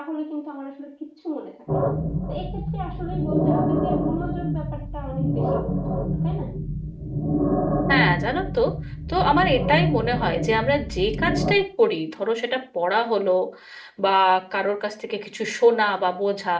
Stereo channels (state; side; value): identical; both; correlation 1.00